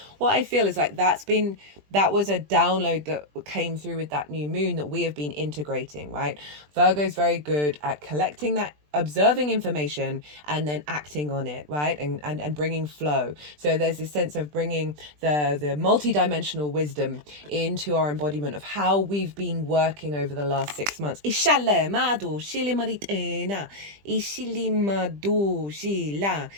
What I feel is like that was a download that came through with that new moon that we have been integrating, right? Virgo is very good at collecting that, observing information and then acting on it, right? And bringing flow. So there's this sense of bringing the multi-dimensional wisdom into our embodiment of how we've been working over the last 6 months.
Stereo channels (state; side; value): late; left; 20 ms